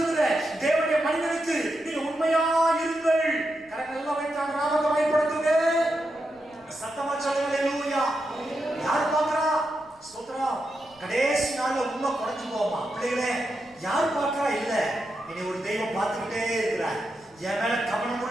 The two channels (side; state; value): left; noise; rumble, 30 dB below the sound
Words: தேவனுடைய மனிதனுக்கு நீங்க உண்மையாய் இருங்கள். கரங்கள் எல்லாம் வைத்தான் நாமத்தை பயன்படுத்துங்க. சத்தமா சொல்லுங்க. ஹalleluya. யார் பார்க்கறா? ஸ்தோத்திரம். கடைசி நாள்ல உண்மை குறைஞ்சு போமா பிள்ளைகளே? யார் பார்க்கறா? இல்ல, இனி ஒரு தெய்வம் பார்த்துக்கிட்டே இருக்கிறார். என் மேல